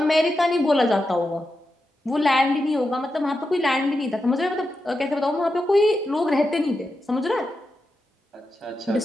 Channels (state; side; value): normal; both; correlation 0.88